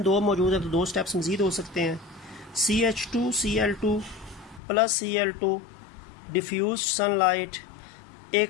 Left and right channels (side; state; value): right; drops out; at 4.6 s